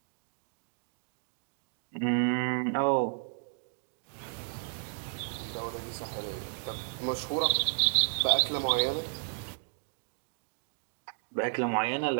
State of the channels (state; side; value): silent; left; digital silence